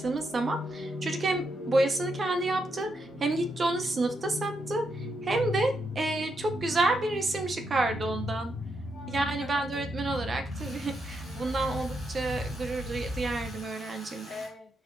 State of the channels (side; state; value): both; normal; correlation 0.81